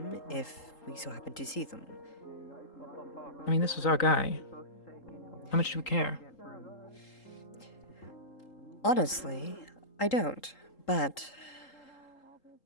if we so happen to see them. I mean, this was our guy. How much do we care? Honestly, I don't, but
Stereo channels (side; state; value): right; late; 3.8 ms